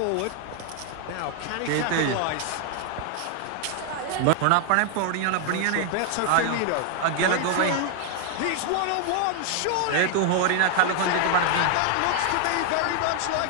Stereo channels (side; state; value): both; different; correlation 0.00